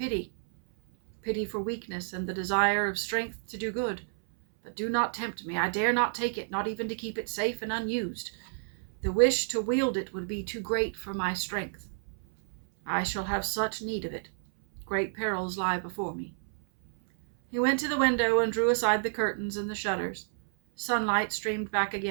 Pity for weakness and the desire of strength to do good. But do not tempt me. I dare not take it, not even to keep it safe and unused. The wish to wield it would be too great for my strength. I shall have such need of it. Great perils lie before me. He went to the window and drew aside the curtains and the shutters. Sunlight streamed back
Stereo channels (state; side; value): silent; left; 58 dB below the other